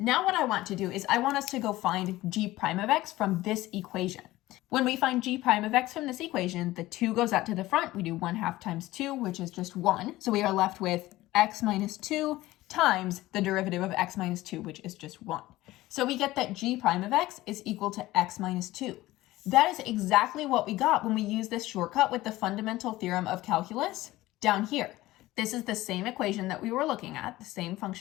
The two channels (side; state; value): right; quieter; 17.3 dB